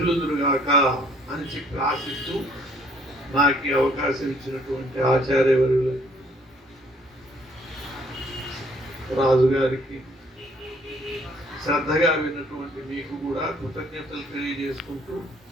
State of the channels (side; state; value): both; normal; correlation 0.62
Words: అని చెప్పి ఆశిస్తూ నాకు ఈ అవకాశం ఇచ్చినటువంటి ఆచార్యవర్యులు రాజుగారికి, శ్రద్ధగా విన్నటువంటి మీకు కూడా కృతజ్ఞతలు తెలియజేసుకుంటూ